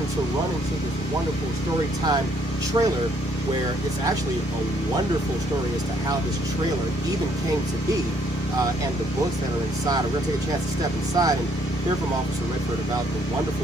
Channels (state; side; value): normal; both; correlation 0.67